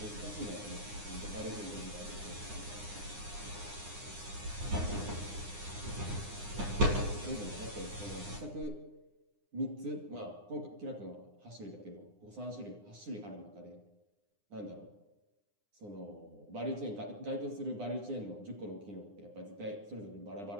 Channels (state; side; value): late; left; 9.8 ms